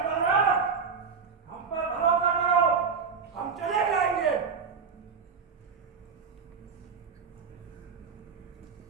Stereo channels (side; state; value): left; quieter; 5.7 dB